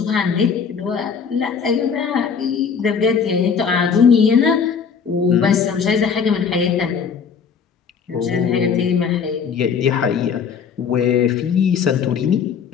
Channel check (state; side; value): quieter; right; 6.4 dB